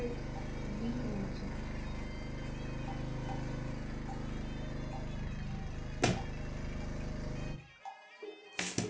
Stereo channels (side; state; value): both; identical; correlation 1.00